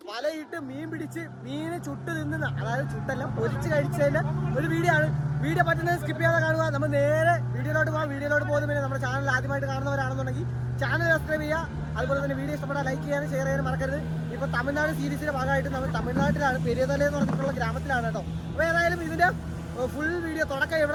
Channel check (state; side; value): identical; both; correlation 1.00